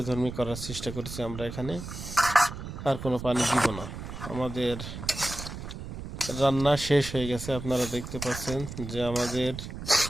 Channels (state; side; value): noise; right; rumble, 9 dB below the sound